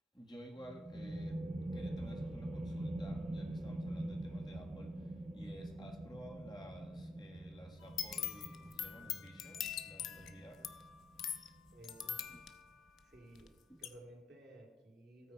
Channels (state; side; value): normal; both; correlation 0.81